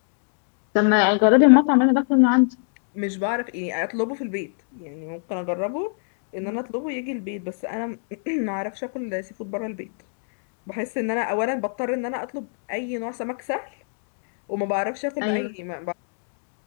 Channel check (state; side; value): silent; right; 62 dB below the other